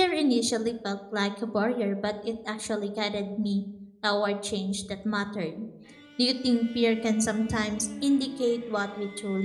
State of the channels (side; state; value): both; identical; correlation 1.00